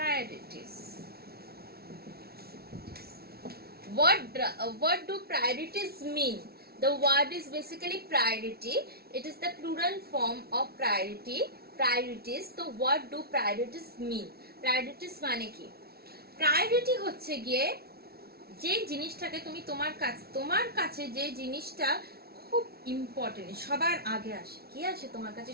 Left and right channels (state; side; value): late; left; 0.45 ms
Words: What do priorities mean? The word is basically priority. It is the plural form of priority, priorities. So what do priorities mean? Priorities মানে কি? Priority হচ্ছে গিয়ে যে জিনিসটাকে তুমি তোমার কাছে যে জিনিসটা খুব ইম্পর্টেন্ট, সবার আগে আসে। কি আসে তোমার কাছে